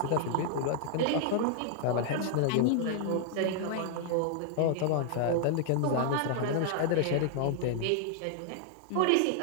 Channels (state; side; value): different; both; correlation -0.01